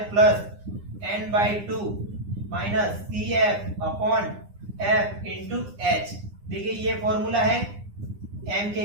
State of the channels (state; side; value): late; left; 9.8 ms